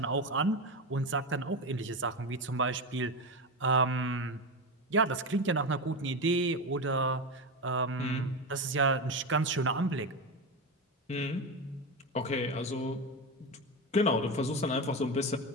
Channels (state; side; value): normal; both; correlation 0.17